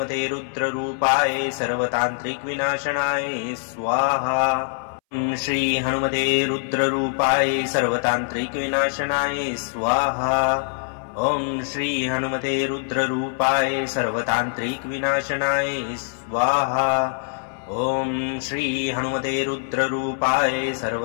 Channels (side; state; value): right; silent; 61 dB below the other